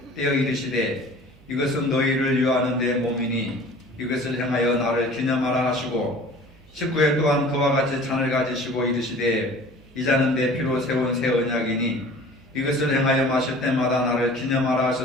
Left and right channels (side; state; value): right; noise; hum, 27 dB below the sound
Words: 떼어 이르시되 이것은 너희를 유하는 데 몸이니 이것을 행하여 나를 기념하라 하시고 19회 또한 그와 같이 잔을 가지시고 이르시되 이 잔은 내 피로 세운 새 언약이니 이것을 행하여 마실 때마다 나를 기념하라